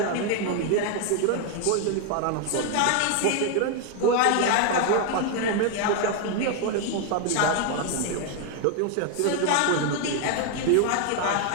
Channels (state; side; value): different; both; correlation 0.01